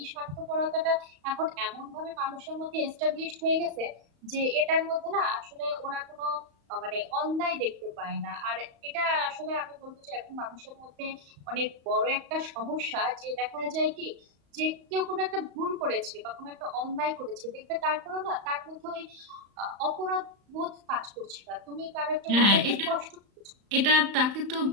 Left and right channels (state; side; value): late; left; 35 ms